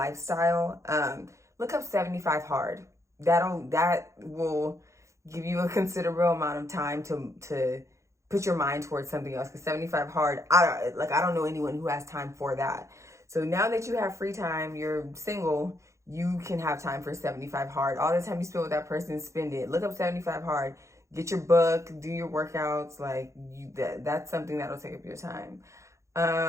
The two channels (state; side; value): late; left; 0.14 ms